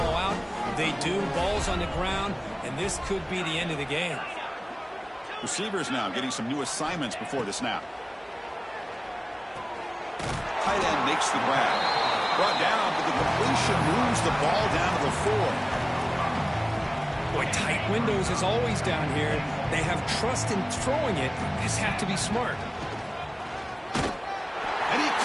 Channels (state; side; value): identical; both; correlation 1.00